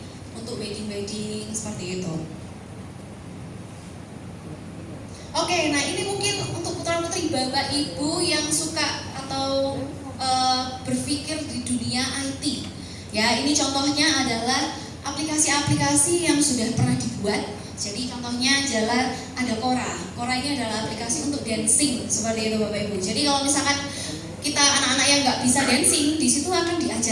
untuk wedding-wedding seperti itu. Oke, nah ini mungkin untuk putra-putri Bapak Ibu yang suka atau berpikir di dunia IT. Ya, ini contohnya adalah aplikasi-aplikasi yang sudah pernah dibuat. Jadi contohnya adalah ada Quora. Quora ini adalah aplikasi untuk dancing seperti itu Bapak Ibu. Jadi kalau misalkan kita anak-anak yang nggak bisa dancing, di situ akan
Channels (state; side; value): identical; both; correlation 1.00